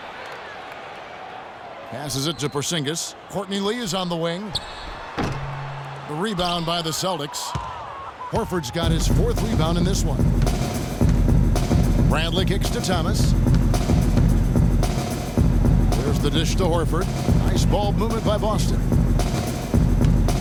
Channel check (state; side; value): identical; both; correlation 1.00